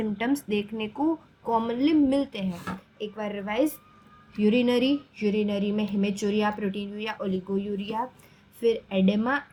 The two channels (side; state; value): both; identical; correlation 1.00